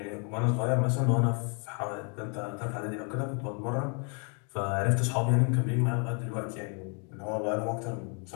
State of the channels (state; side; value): quieter; right; 37.8 dB